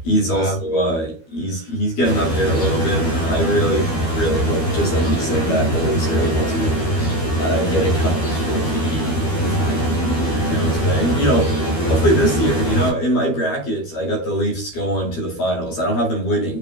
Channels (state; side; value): late; right; 12 ms